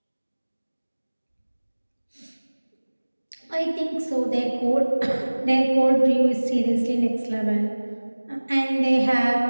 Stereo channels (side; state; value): both; inverted; correlation -1.00